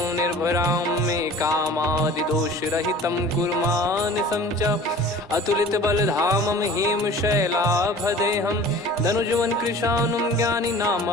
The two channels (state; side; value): normal; both; correlation 0.43